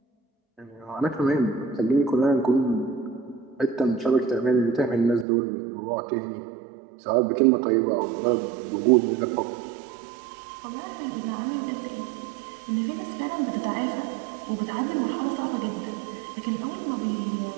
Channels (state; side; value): drops out; left; at 5.2 s